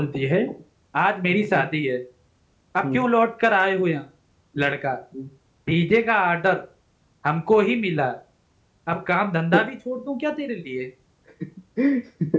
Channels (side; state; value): both; identical; correlation 1.00